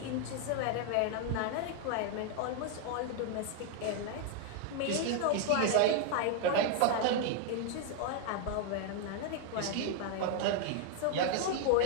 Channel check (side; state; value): both; different; correlation 0.00